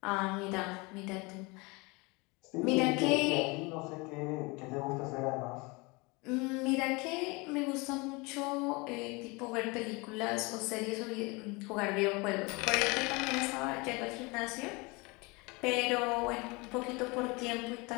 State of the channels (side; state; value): right; quieter; 26.6 dB